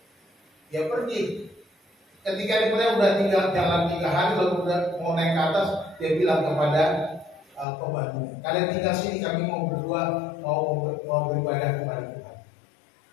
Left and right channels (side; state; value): right; drops out; at 7.7 s